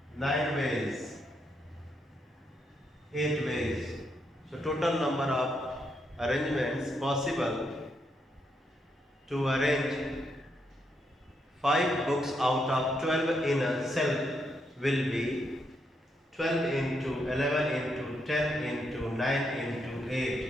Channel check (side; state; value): both; normal; correlation 0.79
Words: 9 ways, 8 ways. So total number of arrangements possible to arrange 5 books out of 12 in a shelf will be 12 into 11 into 10 into 9 into